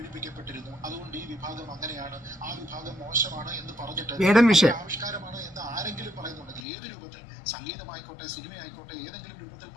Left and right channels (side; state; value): right; drops out; at 6.7 s